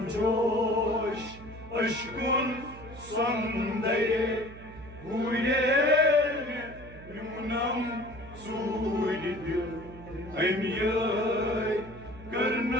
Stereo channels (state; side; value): noise; right; hum, 16 dB below the sound